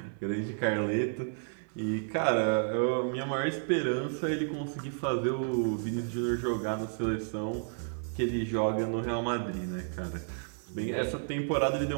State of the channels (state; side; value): silent; left; 57 dB below the other